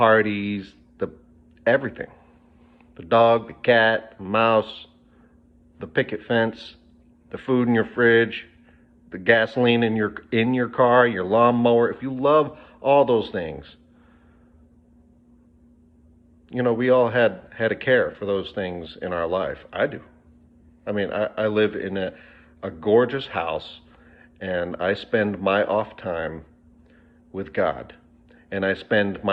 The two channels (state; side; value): identical; both; correlation 1.00